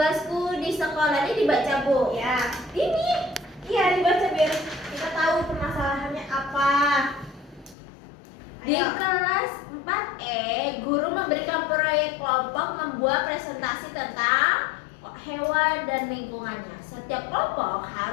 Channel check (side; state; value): right; drops out; at 7.8 s